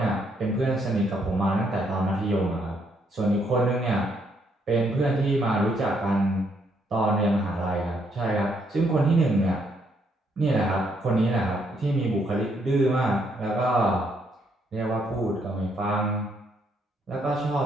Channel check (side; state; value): both; normal; correlation 0.72